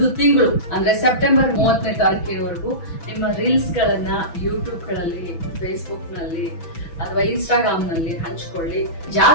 ತಿಂಗಳು ಅಂದ್ರೆ ಸೆಪ್ಟೆಂಬರ್ 30ನೇ ತಾರೀಕಿನವರೆಗೂ ನಿಮ್ಮ ರೀಲ್ಸ್ ಗಳನ್ನ ಯೂಟ್ಯೂಬ್ ಗಳಲ್ಲಿ, ಫೇಸ್ಬುಕ್ ನಲ್ಲಿ ಅಥವಾ ಇನ್ಸ್ಟಾಗ್ರಾಮ್ ನಲ್ಲಿ ಹಂಚ್ಕೊಳ್ಳಿ.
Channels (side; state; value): right; late; 6.1 ms